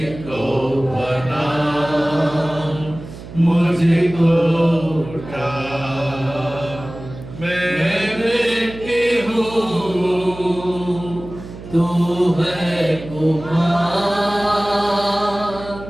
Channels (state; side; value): noise; right; hum, 14 dB below the sound